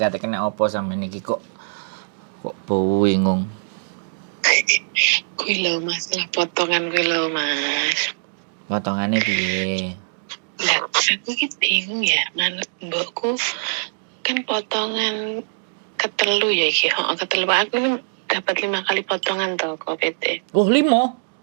kena apa sampean iki kok bingung. kuwi lho masalah potongan kuwi lho Mas. Potongane piye? Lah, aku ki bingung ya, manut mbokku kan potongan ketelu ya iki. Ketelu aku kan dapat 5 kali potongan toh kok PT. Oh, 5.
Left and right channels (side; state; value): left; silent; digital silence